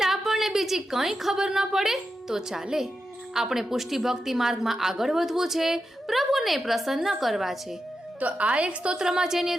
આપણને બીજી કંઈ ખબર ન પડે તો ચાલે. આપણે પુષ્ટિ ભક્તિ માર્ગમાં આગળ વધવું છે, પ્રભુને પ્રસન્ન કરવા છે. તો આ એક સ્તોત્રમાં જે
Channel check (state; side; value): normal; both; correlation 0.89